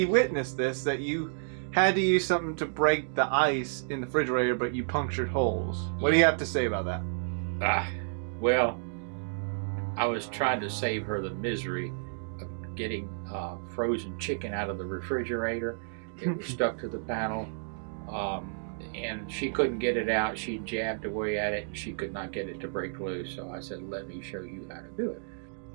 witnessed this, that you had to use something to break the ice in the refrigerator, but you punctured holes. What do you have to say about that? Well, I was trying to save her the misery of getting frozen chicken out of the refrigerator. It was stuck to the panel, and she couldn't get it out. She jabbed away at it, and she could not get it to break loose. So I said, "Let me show you how to do it."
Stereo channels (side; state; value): left; silent; digital silence